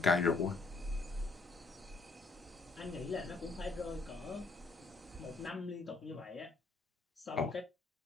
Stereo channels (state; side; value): quieter; right; 3.7 dB